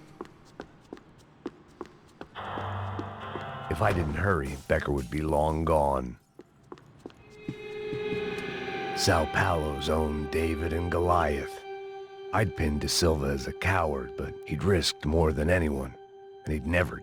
If I didn't hurry, Becker would be long gone. Sao Paulo's own David and Goliath. I'd pinned De Silva as a coward, but he'd risked more than anyone, and he'd never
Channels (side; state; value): both; identical; correlation 1.00